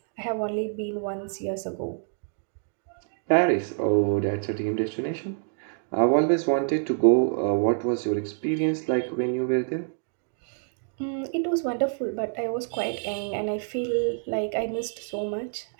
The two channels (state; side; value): silent; left; 60 dB below the other